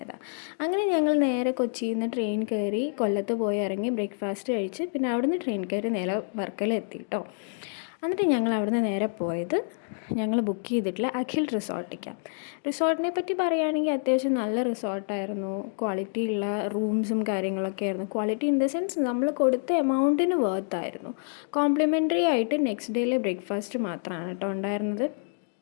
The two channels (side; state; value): right; silent; digital silence